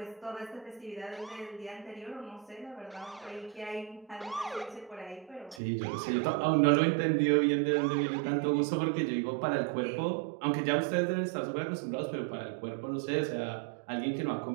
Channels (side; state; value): left; drops out; at 5.6 s